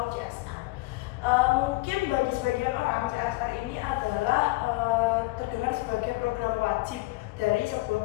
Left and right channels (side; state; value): right; quieter; 22.3 dB